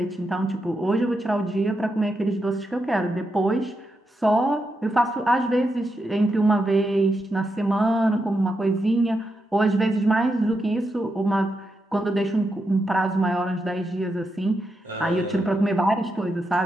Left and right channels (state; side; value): normal; both; correlation 0.85